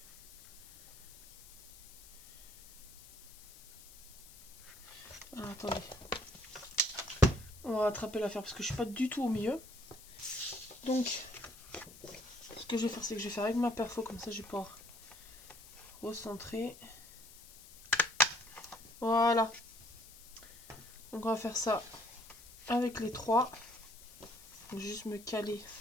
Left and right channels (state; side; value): noise; left; hiss, 19 dB below the sound